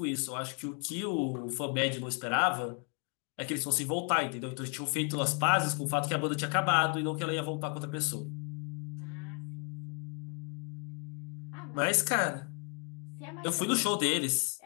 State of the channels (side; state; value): right; quieter; 37.0 dB